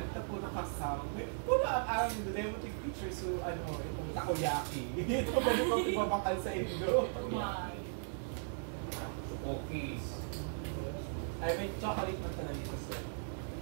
tapo na kasama. Wala ang demotic picture so itong takoyaki. Ito ba naman ibabakal sa Indo? Cookies. Ay, may chocolate man talaga dito sir.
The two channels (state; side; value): silent; left; digital silence